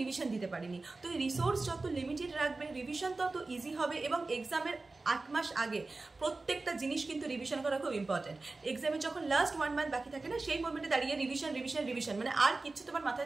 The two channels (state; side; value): quieter; left; 3.5 dB